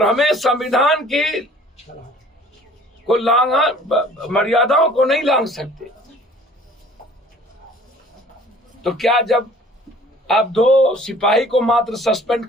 हमें संविधान की को मर्यादाओं को नहीं लांघ सकते। तो क्या जब आप दो सिपाही को मात्र सस्पेंड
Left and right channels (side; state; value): both; normal; correlation 0.51